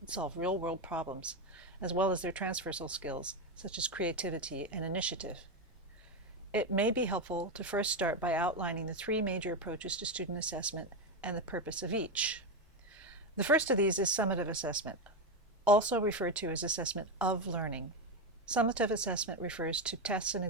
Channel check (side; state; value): both; normal; correlation 0.10